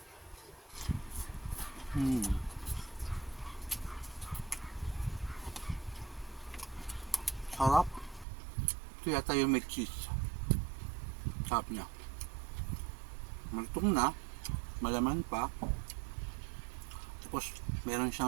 Sarap. Ito yata yung may cheese. Sarap niya. Malutong na. Malaman pa. Tapos, meron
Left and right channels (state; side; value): drops out; left; at 8.2 s